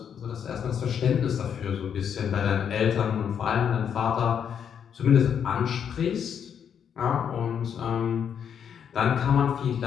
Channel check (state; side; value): quieter; right; 8.0 dB